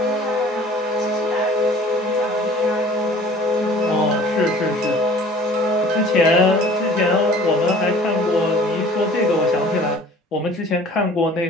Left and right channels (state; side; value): normal; both; correlation 0.48